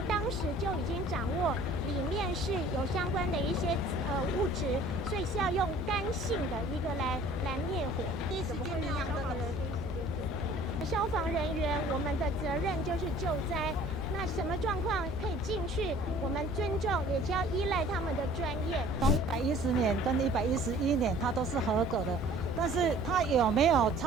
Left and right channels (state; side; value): normal; both; correlation 0.51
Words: 当时就已经掌握里面是有相关的一些物质，所以是要用干性的一个来灭火。第一时间让消防人第一时间进去。消防人员我们的责任就是救灾。那什么状况可以进去？我们尊重，也就要依赖他们的专业。从110年跟111年，它都是合格的，但是它有没有